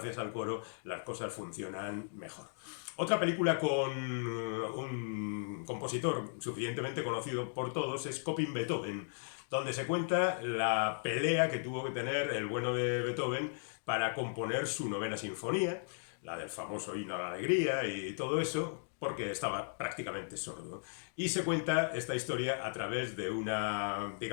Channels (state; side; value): silent; right; digital silence